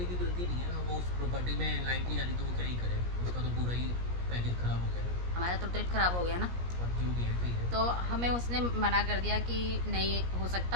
की गलती नहीं है, वो उस प्रॉपर्टी में लाइट नहीं आ रही तो वो क्या ही करे, उसका तो पूरा ही पैकेज खराब हो गया। हमारा तो ट्रिप खराब हो गया ना। और जो भी है ठीक है। तो हमें उसने मना कर दिया कि नहीं हो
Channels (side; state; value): left; late; 17 ms